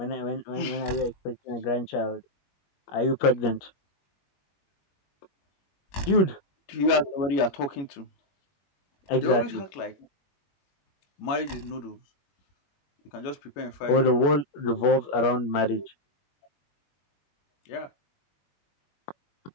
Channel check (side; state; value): right; late; 21 ms